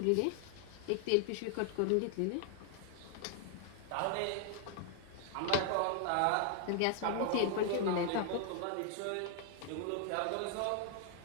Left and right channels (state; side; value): different; both; correlation 0.00